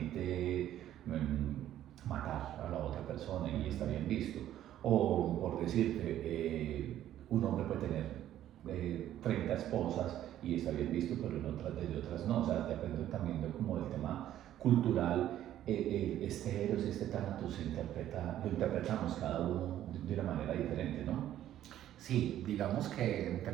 matar a la otra persona y está bien visto. O por decirte, un hombre puede tener 30 esposas y está bien visto, pero en otras no. O sea, depende también de como del tema cultural. Este Eros y este Tánatos lo interpretamos cada uno de una manera diferente, ¿no? Sí, digamos que en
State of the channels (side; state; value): left; quieter; 12.2 dB